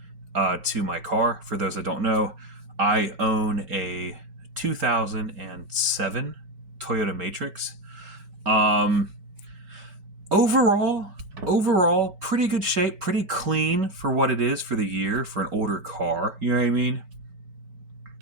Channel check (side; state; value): left; late; 5.2 ms